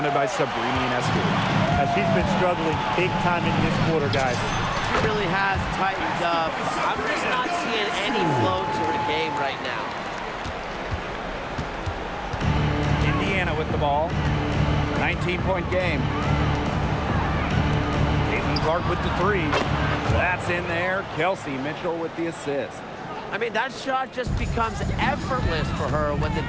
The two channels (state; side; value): identical; both; correlation 1.00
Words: by Sabrina Ionescu. She's been struggling big time in this quarter, guys. She really has tightened up. I'm just not seeing any flow to her game right now. Indiana with the ball. 19-point game. Caitlin Clark with the three. That's in there. Kelsey Mitchell with the assist. I mean, that shot just becomes effortless for her when the